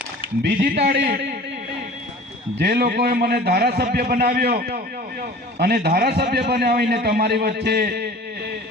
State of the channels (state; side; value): normal; both; correlation 0.42